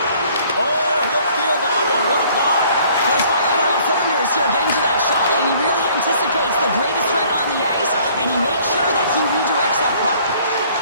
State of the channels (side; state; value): both; inverted; correlation -0.57